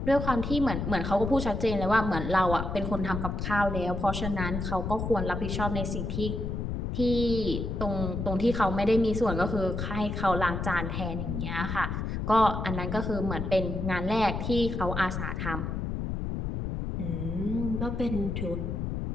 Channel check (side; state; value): left; noise; rumble, 3 dB below the sound